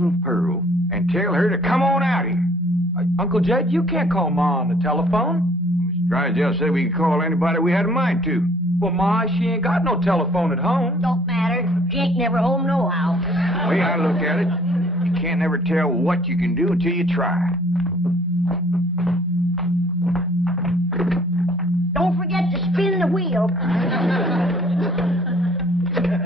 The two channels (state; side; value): normal; both; correlation 0.58